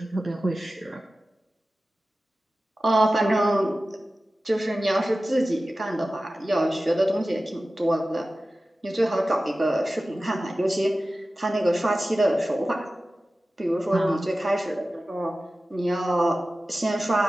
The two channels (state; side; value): normal; both; correlation 0.95